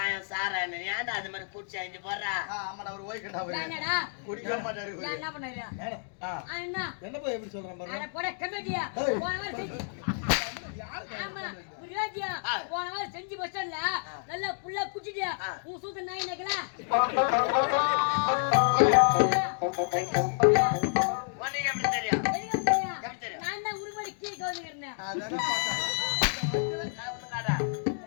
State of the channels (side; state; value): right; silent; digital silence